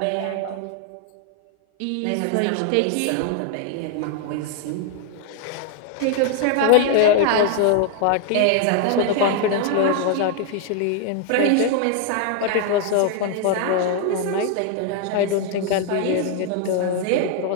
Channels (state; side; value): different; both; correlation 0.00